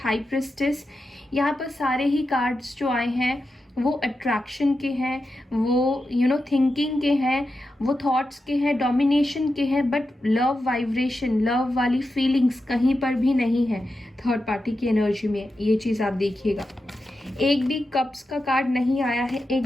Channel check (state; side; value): normal; both; correlation 0.89